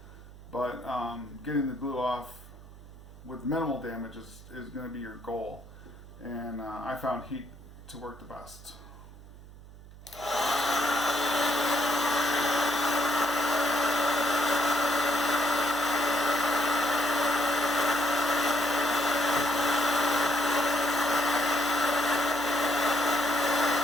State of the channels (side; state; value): right; noise; hum, 18 dB below the sound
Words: But getting the glue off with minimal damage is going to be your goal. And I found heat to work the best.